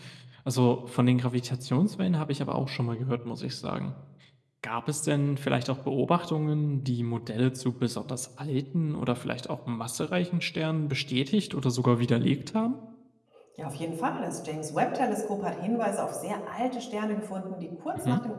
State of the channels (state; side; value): identical; both; correlation 1.00